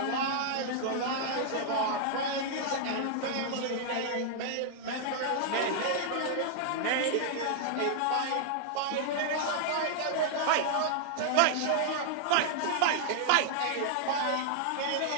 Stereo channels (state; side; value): different; both; correlation 0.00